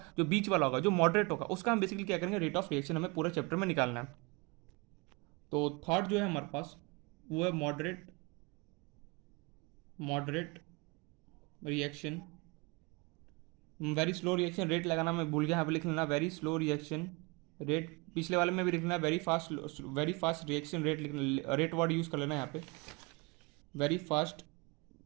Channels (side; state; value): left; quieter; 27.3 dB